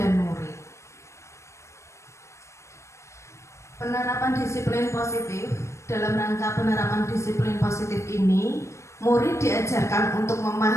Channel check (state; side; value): late; right; 0.14 ms